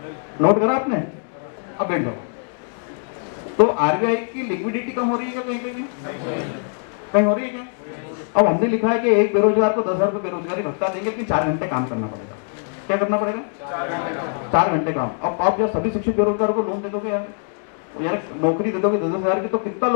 नोट करा आपने? अब बैठ जाओ। तो आरबीआई की लिक्विडिटी कम हो रही है क्या? कहीं कहीं कहीं हो रही है क्या? अब हमने लिखा है कि एक बेरोजगार को 10,000 रुपए बेरोजगारी भत्ता देंगे, लेकिन 4 घंटे काम करना पड़ेगा। क्या करना पड़ेगा? 4 घंटे काम। अब आप जब सभी शिक्षित बेरोजगारों को लोन दे दोगे यार नौकरी दे दोगे 10,000 की, तो कितना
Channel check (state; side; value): silent; right; 56 dB below the other